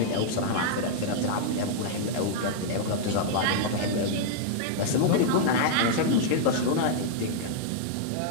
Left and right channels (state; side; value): different; both; correlation -0.01